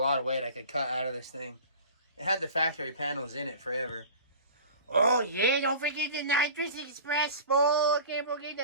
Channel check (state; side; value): inverted; both; correlation -0.40